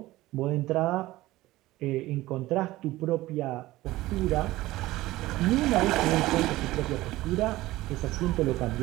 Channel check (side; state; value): left; quieter; 17.6 dB